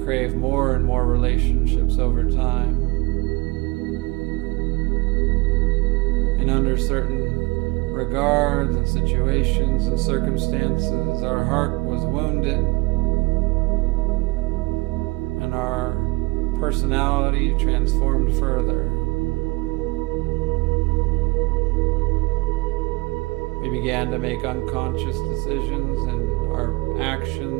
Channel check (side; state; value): left; quieter; 23.9 dB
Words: crave more and more relationships over time. And under certain regards and situations and circumstances, our heart was wounded, and our personality transformed further. We began to make unconscious decisions in our